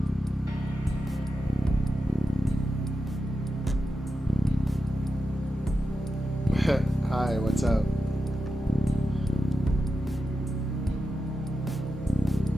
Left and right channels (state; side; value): normal; both; correlation 0.90